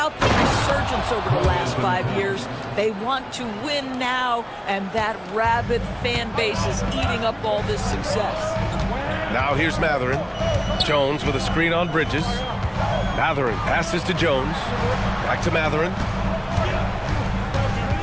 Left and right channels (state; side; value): identical; both; correlation 1.00